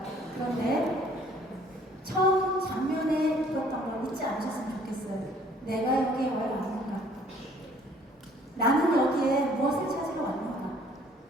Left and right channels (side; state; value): both; normal; correlation 0.58